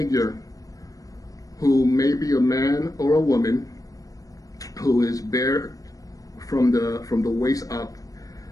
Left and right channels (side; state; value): right; late; 0.17 ms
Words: who may be a man or a woman, who is bare from the waist up,